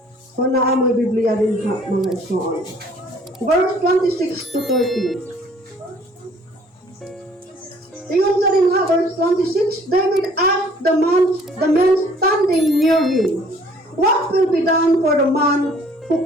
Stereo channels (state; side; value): normal; both; correlation 0.57